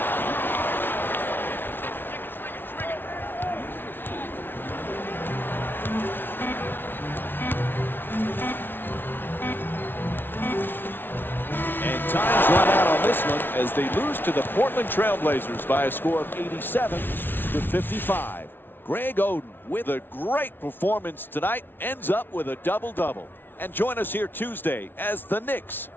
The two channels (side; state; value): right; late; 0.10 ms